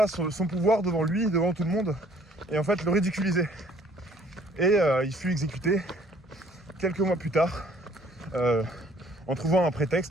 son pouvoir devant lui, devant tout le monde, et en fait le ridiculiser. Et il fut exécuté quelques mois plus tard, en trouvant un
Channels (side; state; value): both; normal; correlation 0.59